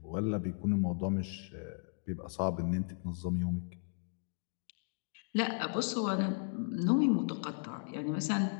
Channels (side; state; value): right; silent; 54 dB below the other